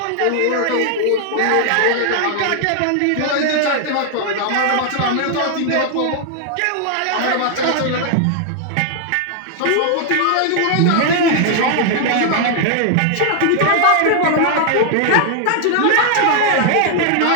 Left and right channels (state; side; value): different; both; correlation 0.00